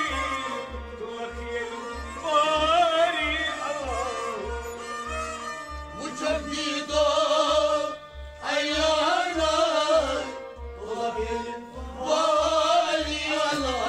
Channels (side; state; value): both; identical; correlation 1.00